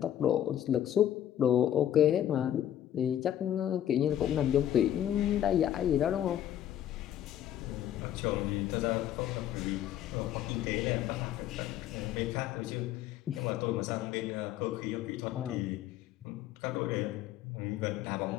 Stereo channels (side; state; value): right; quieter; 11.2 dB